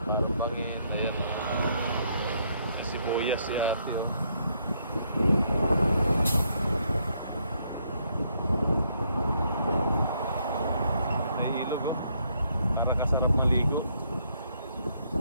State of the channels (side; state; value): both; inverted; correlation -0.72